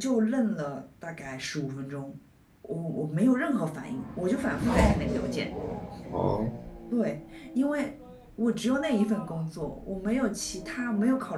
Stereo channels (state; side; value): identical; both; correlation 1.00